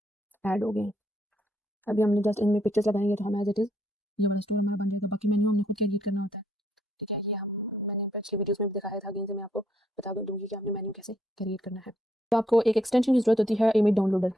ऐड हो गए हैं। अभी हमने जस्ट इनमें पिक्चर्स लगाएंगे तो हम एज इट इज़ ये वाला स्टोर हमारा बन जाएगा। बाकी मेन्यू हमने खुद क्रिएट करना होता है, ठीक है। ये हम मैंने पिछली वीडियोस में भी दिखाया था, अगेन से मैं आपको बता दूंगी कि आपने मेन्यू कैसे क्रिएट करना है। तो आपको एक एक्सटेंशन की जरूरत होती है, इमेज डाउनलोडर,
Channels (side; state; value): both; normal; correlation 0.72